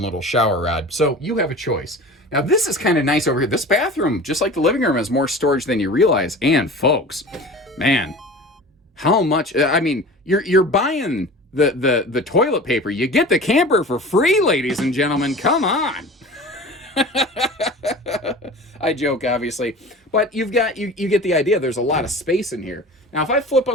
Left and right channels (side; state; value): both; normal; correlation 0.38